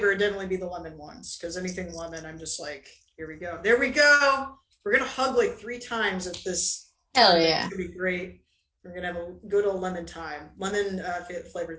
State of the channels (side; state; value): both; identical; correlation 1.00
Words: it'd definitely be the lemon ones because anything lemon, I'm just like, here we go. There we go. We're gonna hug like 3 times at this. Hell yeah. It's gonna be great. We're gonna have a good old lemon time. Lemon flavored